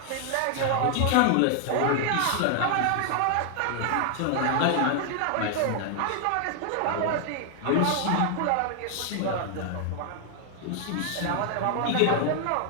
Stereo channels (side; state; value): both; different; correlation 0.00